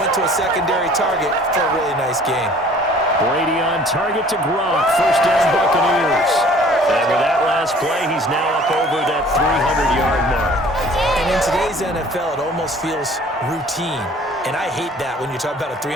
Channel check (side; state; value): both; normal; correlation 0.52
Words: to a secondary target for a really nice game. Brady on target to Gronk. First down, Buccaneers. And with that last play, he's now up over that 300-yard mark. And in today's NFL, it almost feels routine. And I hate that when you talk about a